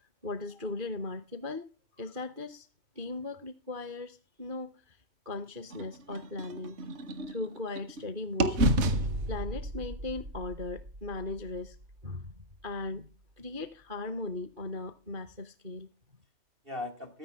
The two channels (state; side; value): late; left; 3.2 ms